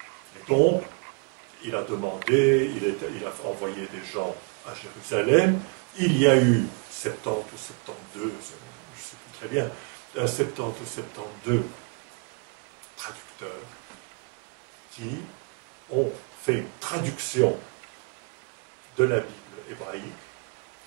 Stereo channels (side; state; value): left; quieter; 32.8 dB